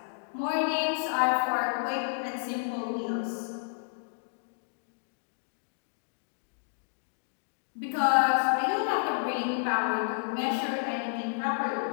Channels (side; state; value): right; silent; digital silence